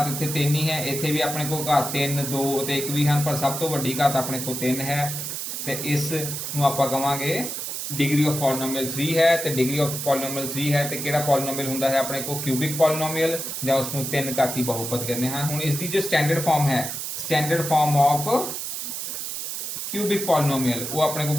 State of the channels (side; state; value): right; noise; hiss, 5 dB below the sound